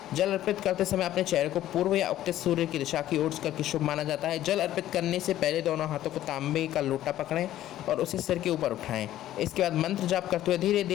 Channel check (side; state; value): right; quieter; 13.2 dB